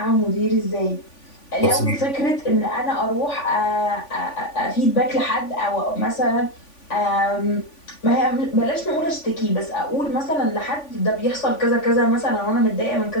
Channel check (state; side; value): late; right; 3.5 ms